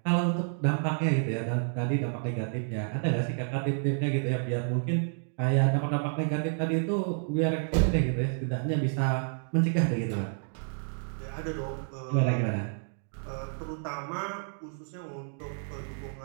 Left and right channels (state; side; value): silent; left; digital silence